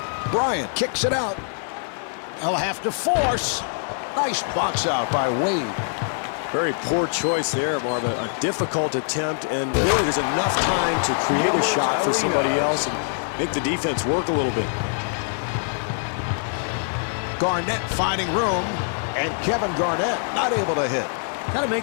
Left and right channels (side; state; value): right; silent; digital silence